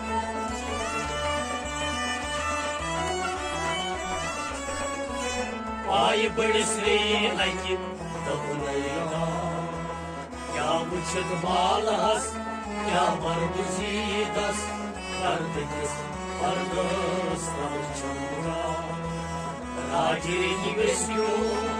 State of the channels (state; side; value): identical; both; correlation 1.00